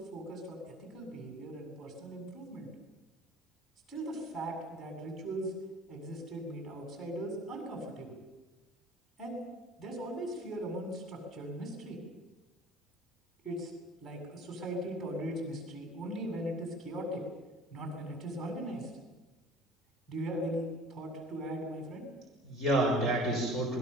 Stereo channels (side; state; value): both; normal; correlation 0.45